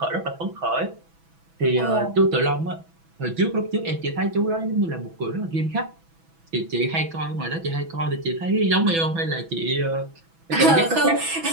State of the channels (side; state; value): left; late; 6.1 ms